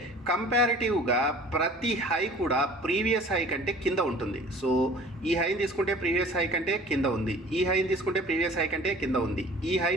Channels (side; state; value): both; normal; correlation 0.47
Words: కంపారిటివ్గా ప్రతి హై కూడా ప్రీవియస్ హై కంటే కింద ఉంటుంది. సో ఈ హైని తీసుకుంటే ప్రీవియస్ హై కంటే కింద ఉంది, ఈ హైని తీసుకుంటే ప్రీవియస్ హై కంటే కింద ఉంది, ఈ